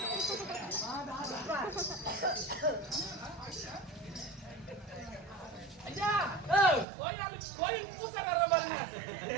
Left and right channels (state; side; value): drops out; left; at 6.9 s